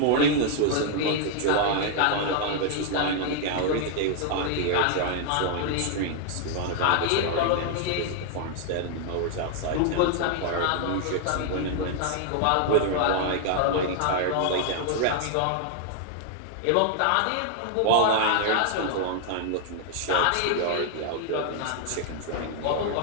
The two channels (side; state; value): both; different; correlation 0.00